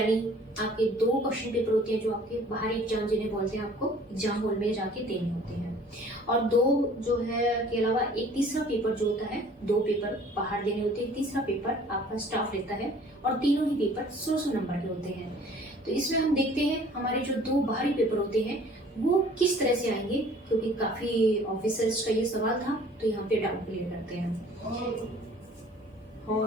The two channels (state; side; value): normal; both; correlation 0.52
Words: आपके 2 क्वेश्चन पेपर होते हैं जो आपके बाहरी एग्जाम जिन्हें बोलते हैं, आपको एग्जाम हॉल में जाके देने होते हैं। और 2 जो है के अलावा एक तीसरा पेपर जो होता है, 2 पेपर बाहर देने होते हैं, तीसरा पेपर आपका स्टाफ लेता है और तीनों ही पेपर 100 नंबर के होते हैं। तो इसमें हम देखते हैं हमारे जो 2 बाहरी पेपर होते हैं वो किस तरह से आएंगे, क्योंकि काफी ऑफिसर्स का ये सवाल था, तो यहाँ पे डाउट क्लियर करते हैं।